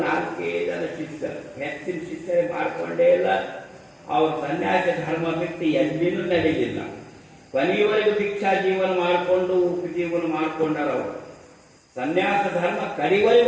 4 ಜನ ಶಿಷ್ಯರು, ಹೆಚ್ಚಿನ ಶಿಷ್ಯರೇ ಮಾಡ್ಕೊಂಡೇ ಇಲ್ಲ. ಅವ್ರ ಸನ್ಯಾಸಿ ಧರ್ಮ ಬಿಟ್ಟು ಎಲ್ಲಿನೂ ನಡೆಯಲಿಲ್ಲ. ಕೊನೆಯವರೆಗೂ ದೀಕ್ಷಾ ಜೀವನ ಮಾಡಿಕೊಂಡು ಉಪಜೀವನ ಮಾಡ್ಕೊಂಡಾರ. ಅವರು ಸನ್ಯಾಸ ಧರ್ಮ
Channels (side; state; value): both; identical; correlation 1.00